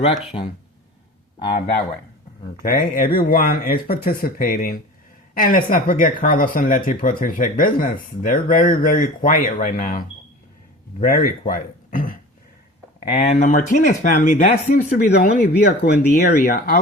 that way. Okay? Everyone is participating, and let's not forget Carlos and Letty Protege Business. They're very, very quiet right now. Very quiet. And the Martinez family, that seems to be the only vehicle in the area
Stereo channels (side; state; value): both; normal; correlation 0.38